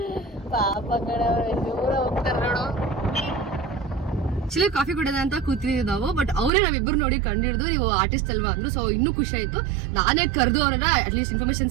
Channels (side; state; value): left; drops out; at 6.5 s